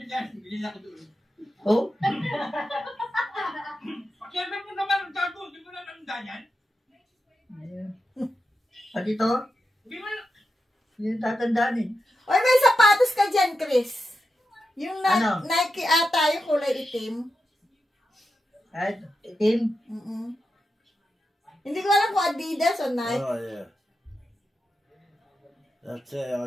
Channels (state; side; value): normal; both; correlation 0.88